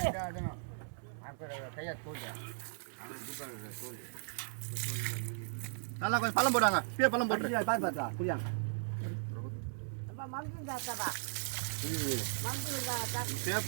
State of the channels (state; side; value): silent; left; digital silence